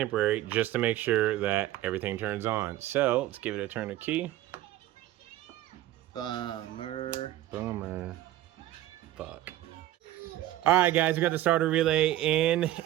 just to make sure that everything turns on. So let's give it a turn of key. Bummer. Fuck. All right, guys, we got the starter relay in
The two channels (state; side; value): quieter; left; 14.3 dB